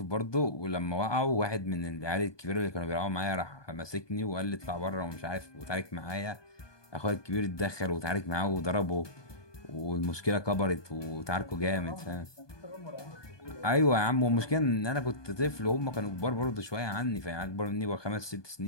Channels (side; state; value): right; late; 1.2 ms